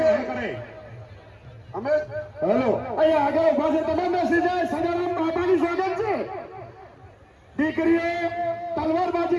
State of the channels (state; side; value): identical; both; correlation 1.00